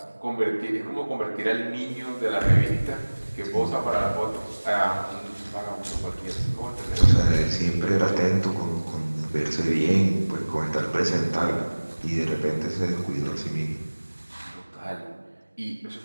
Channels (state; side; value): inverted; both; correlation -1.00